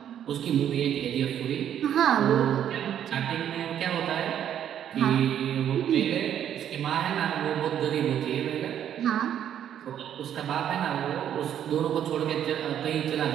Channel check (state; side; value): quieter; left; 9.9 dB